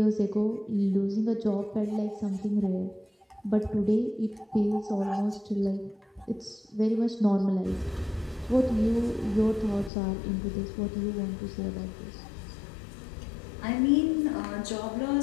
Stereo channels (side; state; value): right; drops out; at 9.9 s